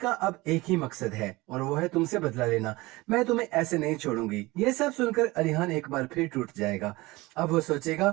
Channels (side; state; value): left; quieter; 21.1 dB